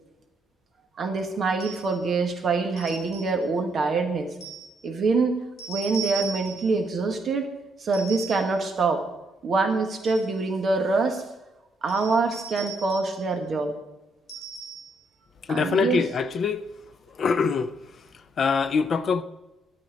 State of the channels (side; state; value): both; normal; correlation 0.73